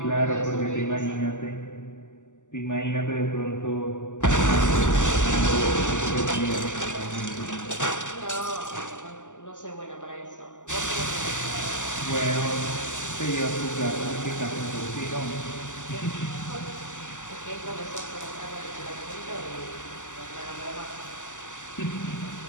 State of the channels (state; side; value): late; right; 0.86 ms